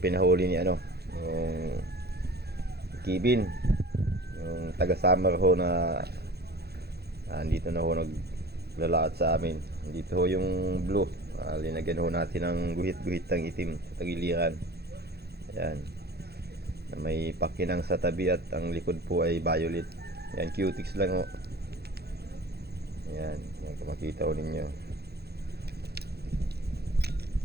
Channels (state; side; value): late; left; 0.47 ms